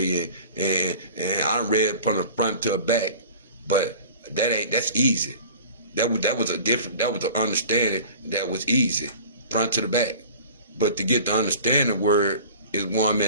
And I read it from the front to the back, but that's easy. That was an understanding that was easy, front to the back. But to get the understanding word is where I'm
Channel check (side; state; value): both; inverted; correlation -0.41